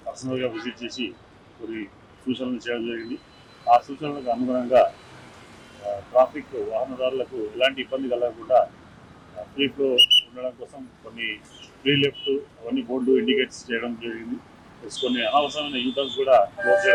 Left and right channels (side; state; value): both; identical; correlation 1.00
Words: పర్సనల్గా విజిట్ చేసి కొన్ని సూచనలు చేయడం జరిగింది. ఆ సూచనలకు అనుగుణంగా ట్రాఫిక్ వాహనదారులకు ఎలాంటి ఇబ్బంది కలగకుండా ఫ్రీ ఫ్లో ఉండడం కోసం కొన్ని ఫ్రీ లెఫ్ట్ అవన్నీ బోర్డు ఇండికేట్స్ చేయడం జరిగింది. కొన్ని అనవసరమైన యూటర్న్స్ కూడా క్లోజ్